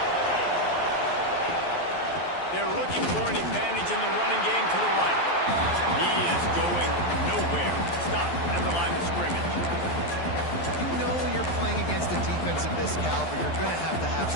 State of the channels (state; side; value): late; right; 12 ms